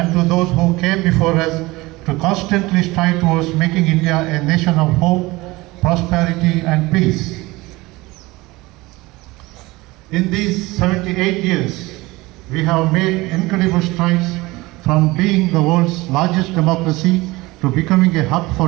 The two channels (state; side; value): quieter; left; 21.1 dB